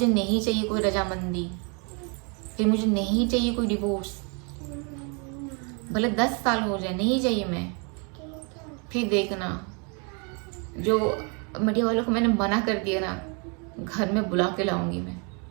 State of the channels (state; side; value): quieter; left; 35.3 dB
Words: नहीं चाहिए कोई रजामंदी, फिर मुझे नहीं चाहिए कोई डिवोर्स, भले 10 साल हो जाए, नहीं चाहिए मैं। फिर देखना, जो मीडिया वालों को मैंने मना कर दिया ना, घर में बुला के लाऊंगी मैं।